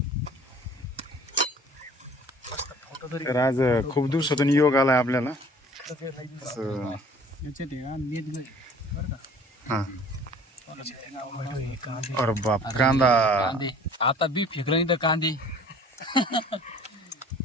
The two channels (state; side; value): normal; both; correlation 0.50